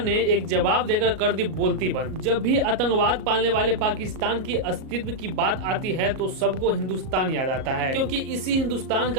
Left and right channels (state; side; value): late; left; 38 ms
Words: ने एक जवाब देकर कर दी बोलती बंद। जब भी आतंकवाद पालने वाले पाकिस्तान की अस्तित्व की बात आती है तो सबको हिंदुस्तान याद आता है, क्योंकि इसी हिंदुस्तान